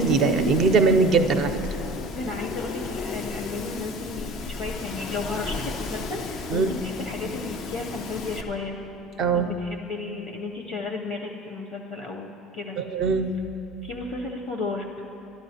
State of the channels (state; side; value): normal; both; correlation 0.41